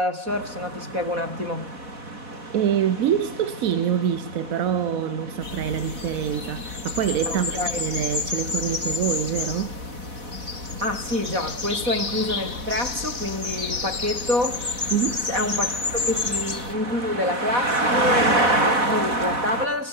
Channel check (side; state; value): left; late; 4.1 ms